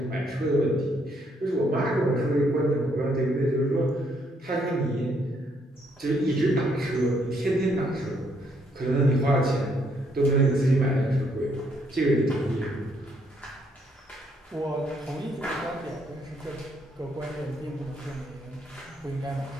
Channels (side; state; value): both; normal; correlation 0.71